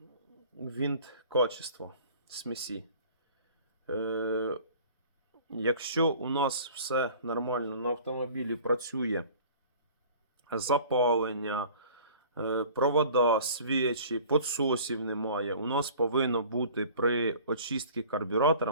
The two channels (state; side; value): inverted; both; correlation -0.47